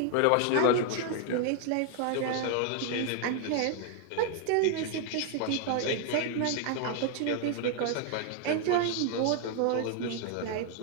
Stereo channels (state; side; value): different; both; correlation 0.00